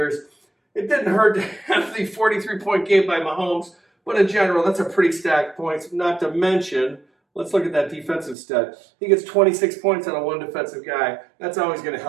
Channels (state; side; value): drops out; left; at 8.3 s